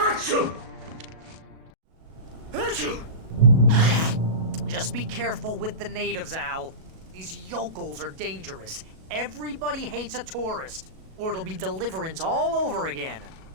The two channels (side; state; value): left; late; 37 ms